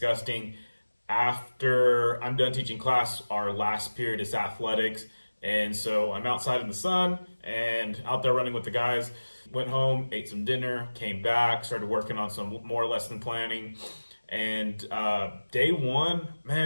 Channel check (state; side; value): inverted; both; correlation -1.00